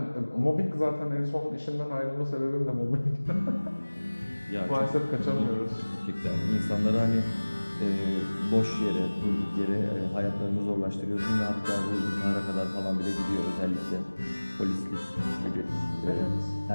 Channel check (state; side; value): inverted; both; correlation -1.00